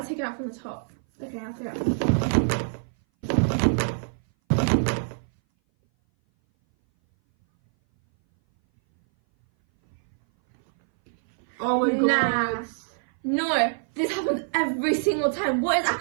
take it out from the top. Okay, I'll take it out. Oh my god. No, this happens every single time. What is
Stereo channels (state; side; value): silent; left; 59 dB below the other